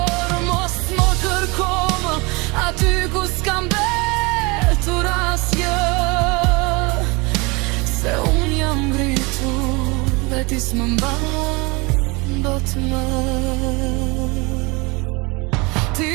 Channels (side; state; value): left; quieter; 26.8 dB